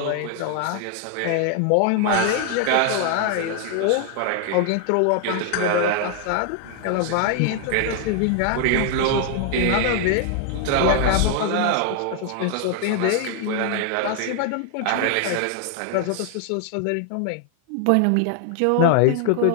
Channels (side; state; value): both; different; correlation 0.00